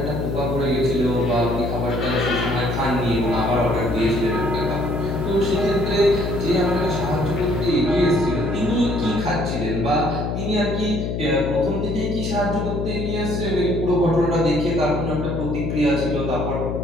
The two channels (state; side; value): noise; left; hum, 2 dB below the sound